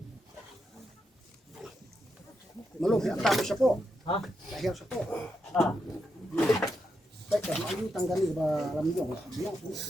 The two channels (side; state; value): both; normal; correlation 0.84